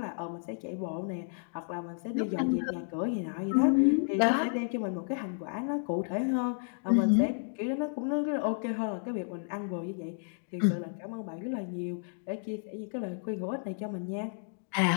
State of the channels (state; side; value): silent; right; digital silence